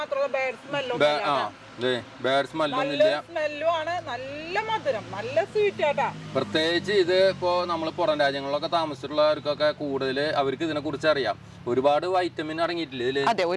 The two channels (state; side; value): identical; both; correlation 1.00